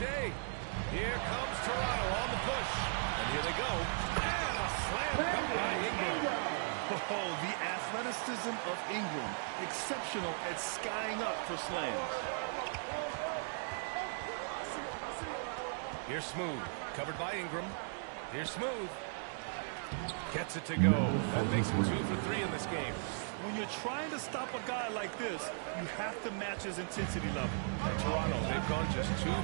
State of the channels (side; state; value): left; silent; digital silence